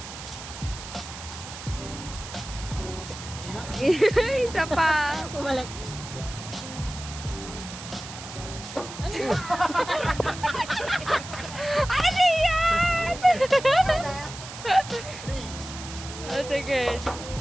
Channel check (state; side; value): noise; right; hiss, 12 dB below the sound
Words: Isa pa. Bumalik. Ano yan? Oh, sige.